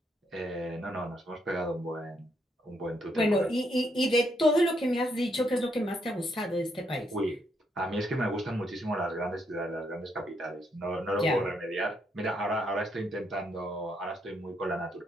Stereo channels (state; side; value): normal; both; correlation 0.76